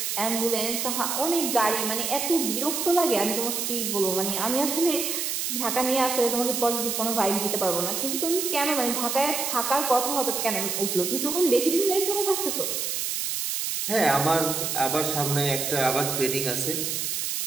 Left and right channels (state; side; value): noise; right; hiss, 1 dB below the sound